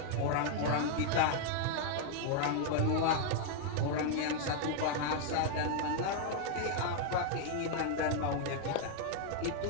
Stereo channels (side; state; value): both; different; correlation 0.00